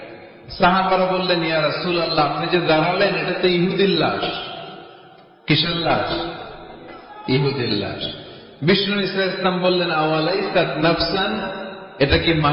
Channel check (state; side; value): identical; both; correlation 1.00